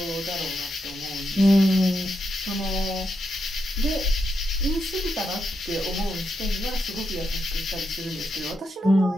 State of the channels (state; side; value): normal; both; correlation 0.84